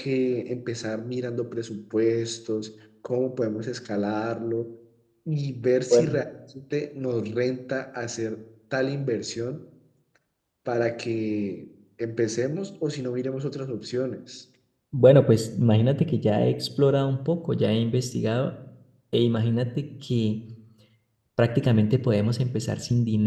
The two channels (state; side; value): identical; both; correlation 1.00